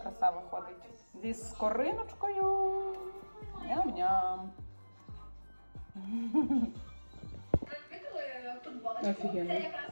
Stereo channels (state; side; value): inverted; both; correlation -1.00